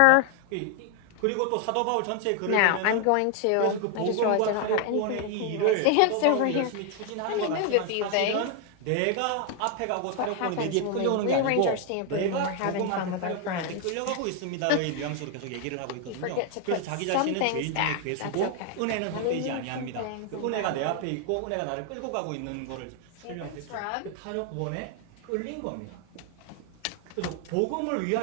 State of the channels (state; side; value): different; both; correlation 0.00